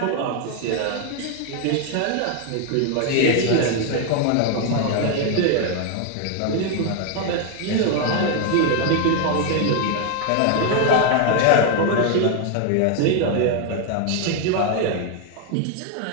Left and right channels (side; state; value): both; different; correlation 0.01